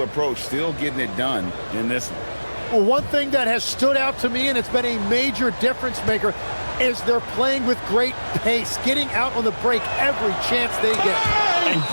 approach still getting it done in this one. Well, one thing that has stood out to me, and it's been a major difference maker, is they're playing with great pace, getting out on the break every chance they get. And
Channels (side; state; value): both; inverted; correlation -1.00